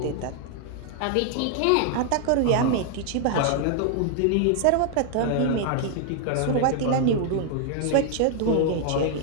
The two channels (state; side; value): different; both; correlation 0.00